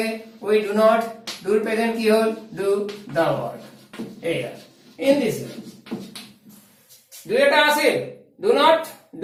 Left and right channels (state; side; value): identical; both; correlation 1.00